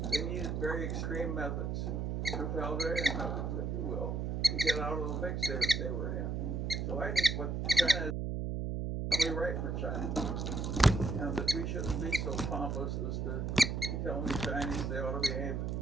They needed very extreme methods, totalitarian methods, if you will, to get out of the fix they were in. So I think what China is probably right for China, and that we shouldn't be so pompous as to tell the Chinese they ought to behave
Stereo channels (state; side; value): noise; right; hum, 1 dB below the sound